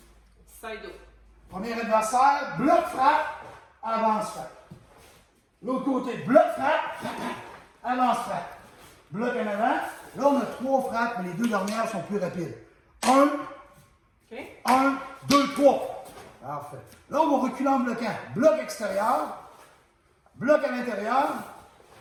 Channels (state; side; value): identical; both; correlation 1.00